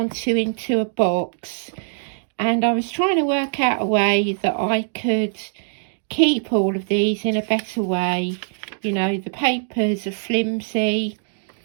to into a box, and I was trying to work out a way that I could keep all of these in a better way. You know, the papers are flimsy.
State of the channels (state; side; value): silent; left; digital silence